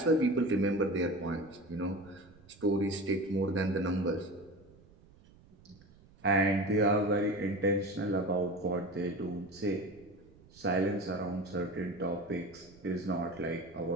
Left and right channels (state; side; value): noise; right; rumble, 25 dB below the sound